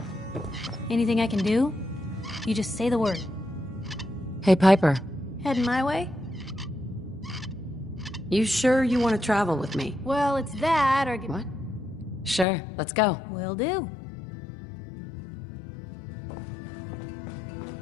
Anything I can do? You just say the word. Hey, Piper. Heading my way? You sure you want to travel with me? Well, it's that or... What? Sure, let's go. Will do.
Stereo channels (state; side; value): drops out; right; at 12.5 s